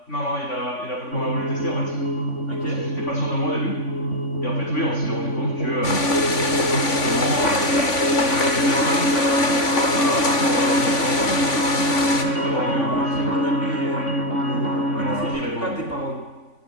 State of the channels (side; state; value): right; late; 3.5 ms